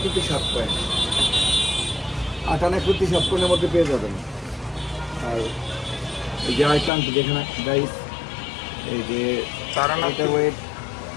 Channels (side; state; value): right; drops out; at 6.9 s